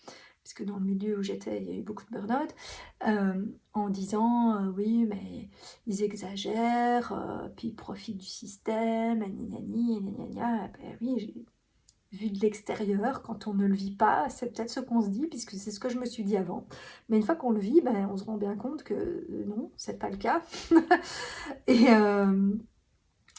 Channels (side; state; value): both; identical; correlation 1.00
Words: parce que dans le milieu où j'étais, il y a eu beaucoup de burn-out, en disant oui, mais ils exagèrent, puis ils profitent du système, gna gna gna. Ben oui, vu de l'extérieur, quand on ne le vit pas, c'est peut-être ce qu'on se dit, puisque c'est ce que je me suis dit avant. Mais une fois qu'on le vit, ben, on se rend bien compte que non, c'est pas le cas. Et,